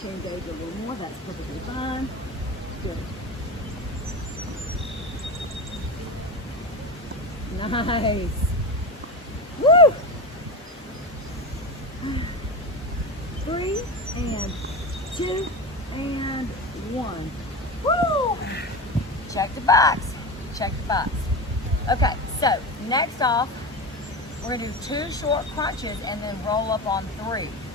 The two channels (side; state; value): both; normal; correlation 0.23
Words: to engage a little more, that's perfectly fine. Good. Nice. Woo! 3 and 2 and 1. Woo! Check the box. Check the box. Okay, so next off, we're going to do 2 short crunches and then roll up on 3